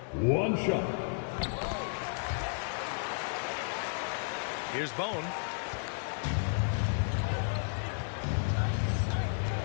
One shot. Here's Bone.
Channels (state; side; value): silent; right; 56 dB below the other